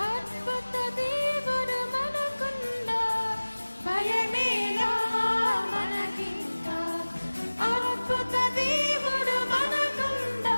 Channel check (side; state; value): both; inverted; correlation -1.00